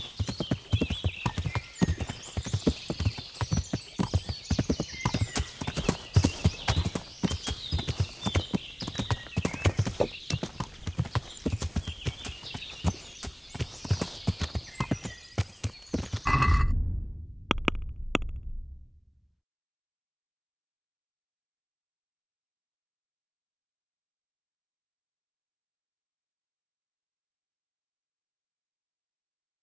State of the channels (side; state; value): both; identical; correlation 1.00